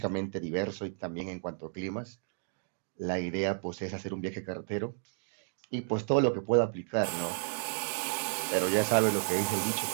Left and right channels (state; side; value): silent; left; digital silence